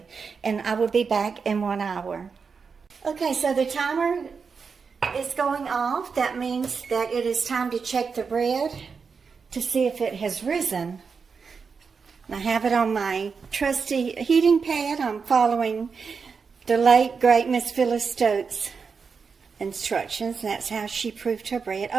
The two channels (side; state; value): left; quieter; 5.5 dB